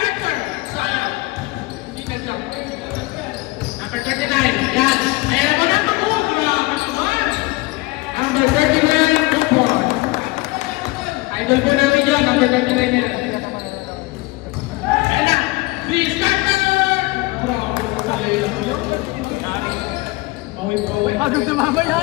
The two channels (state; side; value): quieter; right; 21.9 dB